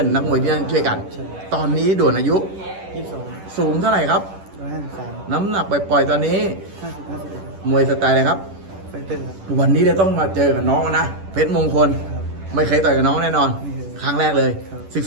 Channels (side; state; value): left; late; 10 ms